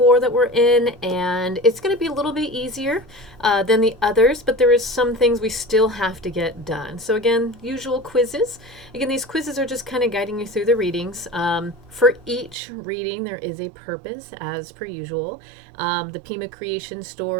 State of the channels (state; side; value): drops out; left; at 12.6 s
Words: that we're in, and it's going to be a little bit easier than the others, but there is some things we still have to get done. So, again, usual quizzes. Again, these quizzes are just kind of guiding you through the readings. For each reading, there is a purpose, as per usual. The Pima creation